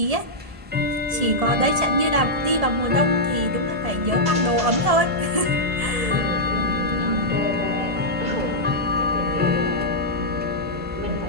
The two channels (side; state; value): left; late; 1.7 ms